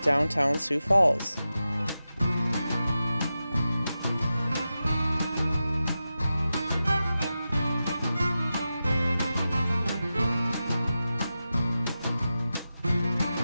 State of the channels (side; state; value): both; inverted; correlation -0.92